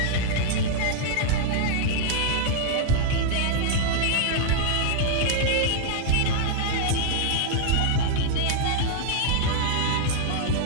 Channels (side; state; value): both; different; correlation -0.01